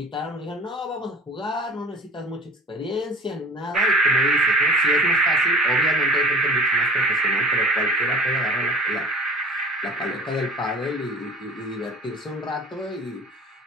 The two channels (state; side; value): normal; both; correlation 0.41